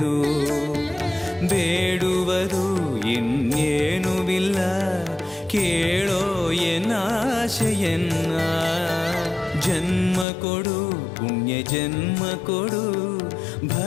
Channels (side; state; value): right; drops out; at 10.2 s